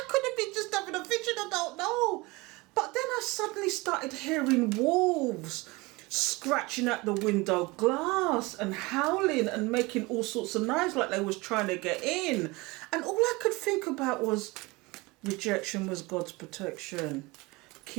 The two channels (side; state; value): left; quieter; 23.6 dB